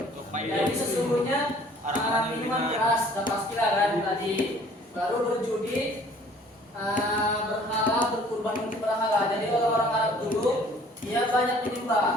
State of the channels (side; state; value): both; normal; correlation 0.54